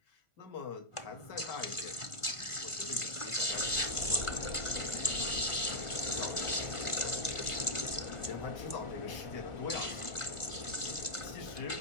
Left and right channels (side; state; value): right; late; 1.4 ms